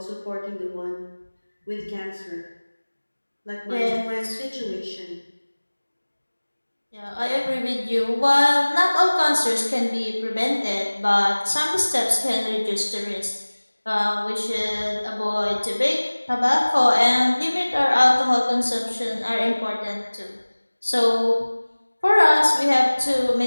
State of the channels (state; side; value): inverted; both; correlation -1.00